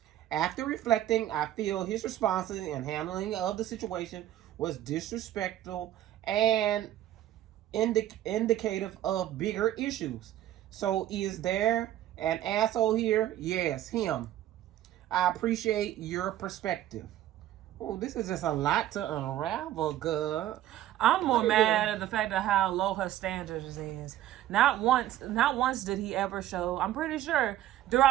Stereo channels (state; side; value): quieter; left; 12.9 dB